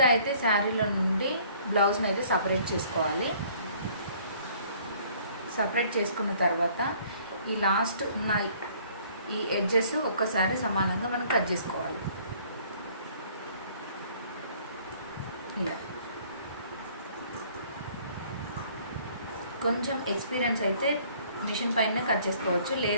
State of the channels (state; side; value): inverted; both; correlation -0.58